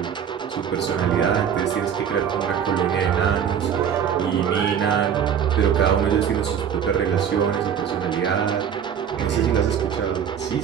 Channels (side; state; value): left; quieter; 8.3 dB